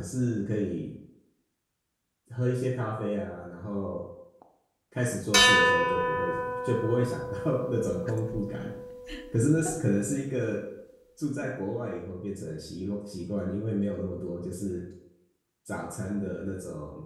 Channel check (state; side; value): identical; both; correlation 1.00